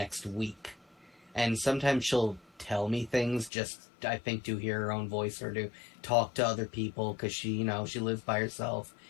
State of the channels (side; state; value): right; drops out; at 3.5 s